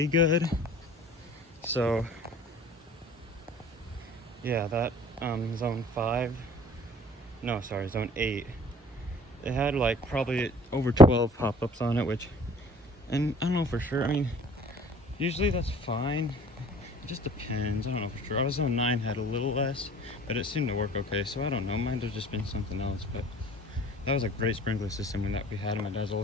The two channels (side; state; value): both; normal; correlation 0.50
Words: good. So yeah, that zone 5, no, sorry, zone 8, it had like probably over 12 pop-ups on it, and I don't know for sure. I mean, usually that's fine. It just depends. I don't know for sure. Our zone 9 had a little less, but it seemed to work okay, so I don't know. Might have just been something else, but that was a great sprinkler system that we had in my dad's